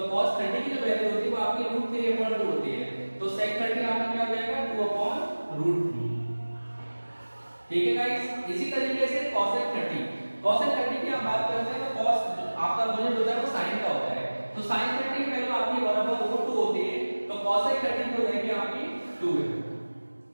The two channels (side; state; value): both; inverted; correlation -1.00